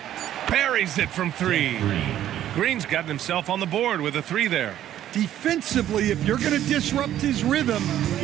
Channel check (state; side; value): quieter; left; 11.9 dB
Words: Buries it from 3. Green's gotten himself on the board with a 3 there. Defensively, if you're going to disrupt his rhythm,